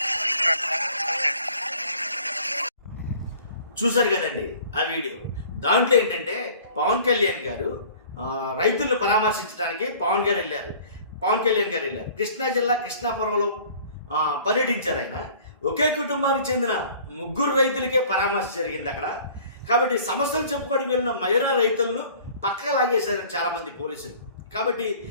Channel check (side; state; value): both; inverted; correlation -0.49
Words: చూశారు కదండి ఆ వీడియో. దాంట్లో ఏంటంటే పవన్ కళ్యాణ్ గారు రైతులను పరామర్శించడానికి పవన్ కళ్యాణ్ గారు వెళ్ళారు. కృష్ణా జిల్లా కృష్ణాపురంలో పర్యటించారు. ఆయన ఒకే కుటుంబానికి చెందిన 3 రైతులకే పరామర్శ జరిగింది అక్కడ. కాబట్టి సమస్యలు చెప్పుకోవడానికి వెళ్ళిన మహిళా రైతులను పక్కకు లాగేశారు చాలామంది పోలీసులు. కాబట్టి